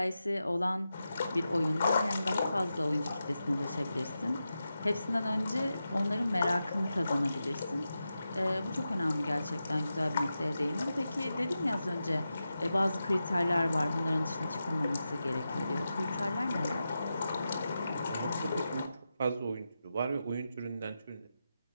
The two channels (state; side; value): inverted; both; correlation -0.90